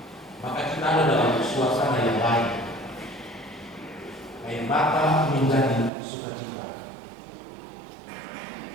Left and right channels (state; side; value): drops out; left; at 5.9 s